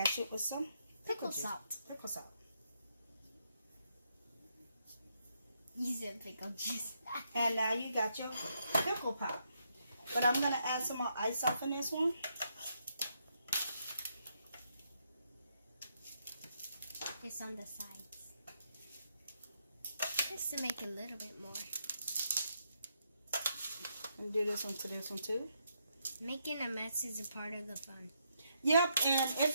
it with some Pickle juice. salt. Pickle salt. You said pickle juice. And now you got your pickle pop. But I'm gonna add some more ice off in this one. Just on the sides. Just to make it a little bit more. And do this one to this one too. Making a mess is a part of the fun. Yep, and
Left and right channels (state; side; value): inverted; both; correlation -0.78